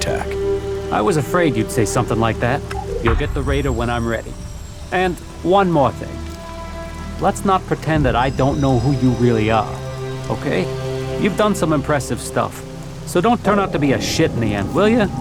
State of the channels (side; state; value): both; identical; correlation 1.00